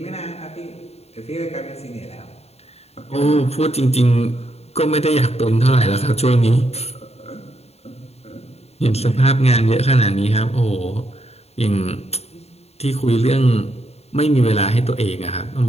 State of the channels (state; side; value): late; right; 0.30 ms